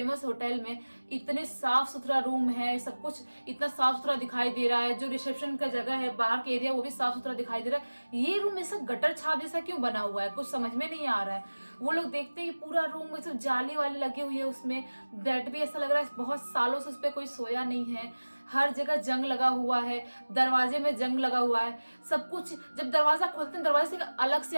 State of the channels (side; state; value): both; inverted; correlation -1.00